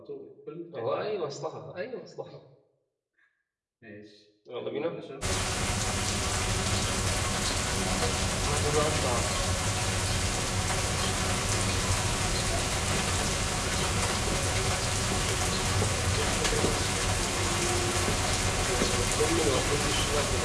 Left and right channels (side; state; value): both; identical; correlation 1.00